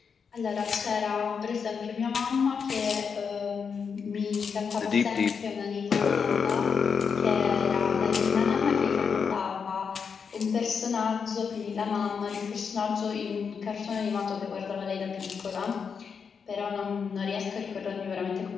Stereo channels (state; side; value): quieter; right; 6.2 dB